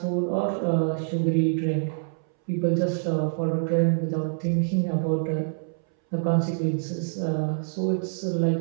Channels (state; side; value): silent; left; 61 dB below the other